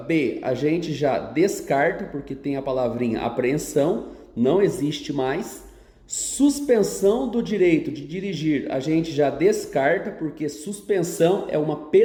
a gente já descarta porque tem a palavrinha apreensão, não existe mais. Suspensão do direito de dirigir a gente já descarta porque suspensão é uma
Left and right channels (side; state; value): both; identical; correlation 1.00